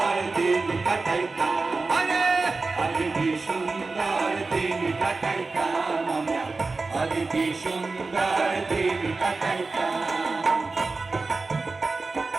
দিন কাটাইতাম, আগে কি সুন্দর দিন কাটাইতাম আমরা, আগে কি সুন্দর দিন কাটাইতাম।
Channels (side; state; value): left; quieter; 3.8 dB